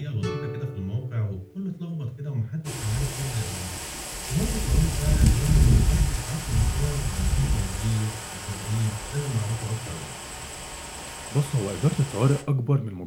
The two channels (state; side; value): identical; both; correlation 1.00